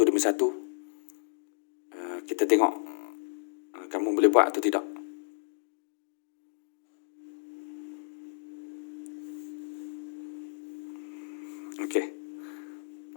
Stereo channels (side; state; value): right; silent; digital silence